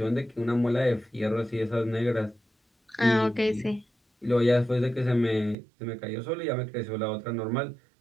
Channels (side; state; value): left; drops out; at 5.6 s